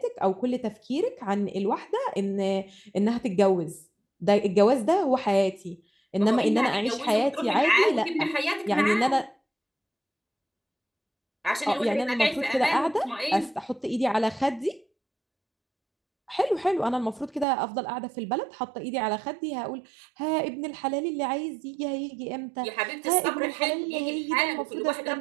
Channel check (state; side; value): drops out; left; at 17.4 s